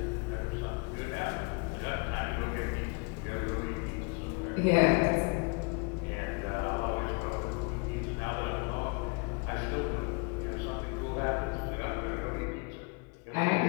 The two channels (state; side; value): quieter; right; 32.0 dB